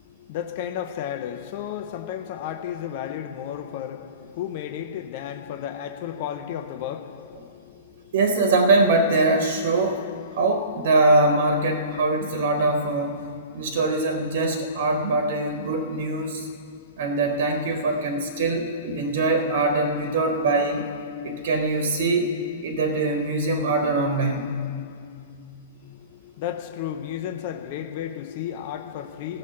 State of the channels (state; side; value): inverted; both; correlation -0.39